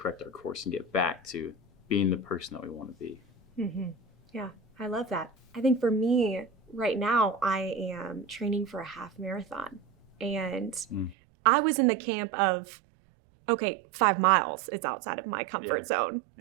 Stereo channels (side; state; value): left; drops out; at 11.2 s